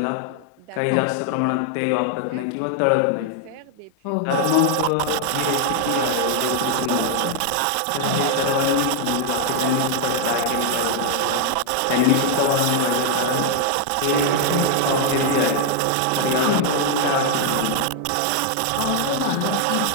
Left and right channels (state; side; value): different; both; correlation 0.00